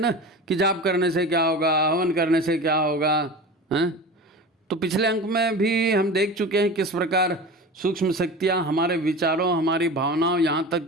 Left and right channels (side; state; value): both; normal; correlation 0.32